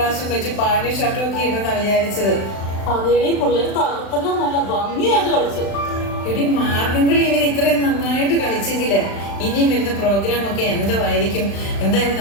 വെച്ച് പാന്റും ഷർട്ടും ഒക്കെ ഇട്ടെന്നാ വിചാരിച്ചത്. അതേടി പിള്ളേര് തകർത്തല്ലോ, നല്ല ഭംഗിയായിട്ട് കളിച്ചു. എടി മാർഗംകളി ഇവർ ഇത്രയും നന്നായിട്ട് കളിച്ചെങ്കില് ഇനിയും വരുന്ന പ്രോഗ്രാം ഒക്കെ എന്തോ ആയിരിക്കും. എന്തായാലും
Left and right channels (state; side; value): late; right; 35 ms